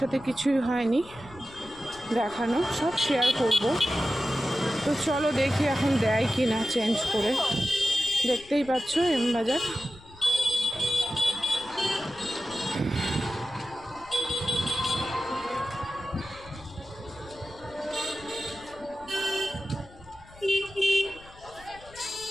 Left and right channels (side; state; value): left; noise; rumble, 22 dB below the sound